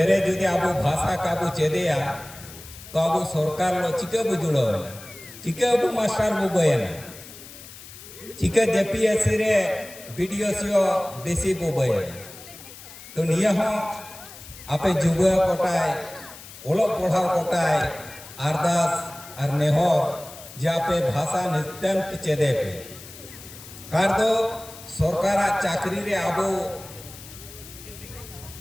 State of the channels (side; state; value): left; noise; hiss, 16 dB below the sound